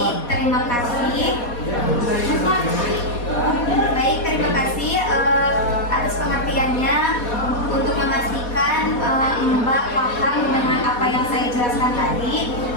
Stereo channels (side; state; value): right; late; 4.2 ms